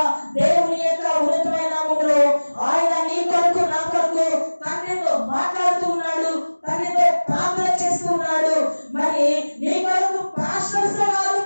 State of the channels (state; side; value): inverted; both; correlation -1.00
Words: దేవుని యొక్క ఉన్నతమైన నామములో ఆయన నీ కొరకు నా కొరకు తండ్రితో మాట్లాడుతూ ఉన్నాడు, తండ్రితో ప్రార్థన చేస్తూ ఉన్నాడు. మరి నీ కొరకు పాస్టర్స్ కాదు